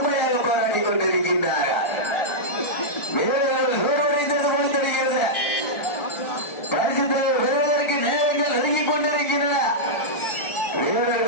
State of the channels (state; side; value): late; right; 1.4 ms